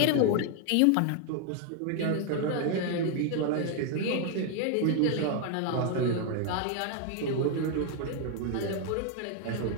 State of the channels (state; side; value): different; both; correlation 0.00